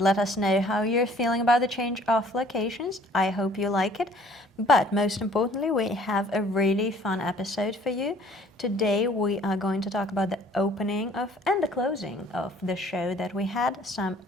let us know how you're feeling about the change of locations. I hope you like it. But most importantly, we have a really fun episode for you. Today we are going to talk about the opening of and the closing of the show that we had. Some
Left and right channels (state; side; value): normal; both; correlation 0.56